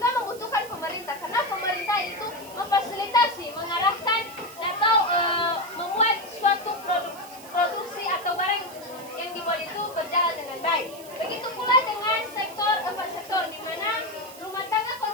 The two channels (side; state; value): right; noise; hiss, 18 dB below the sound